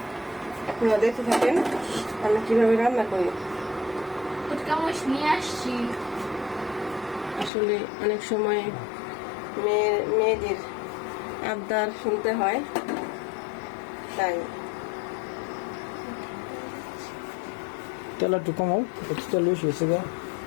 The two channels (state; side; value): drops out; right; at 7.5 s